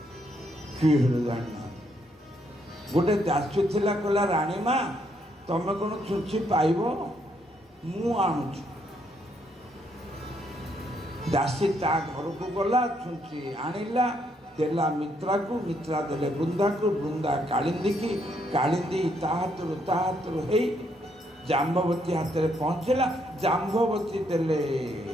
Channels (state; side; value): normal; both; correlation 0.73